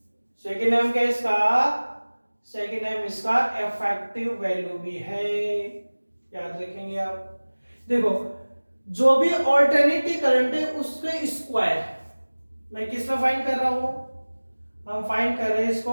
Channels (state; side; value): inverted; both; correlation -1.00